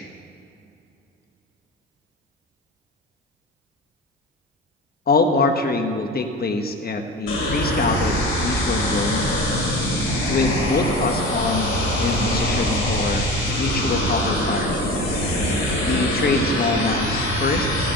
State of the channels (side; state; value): both; normal; correlation 0.31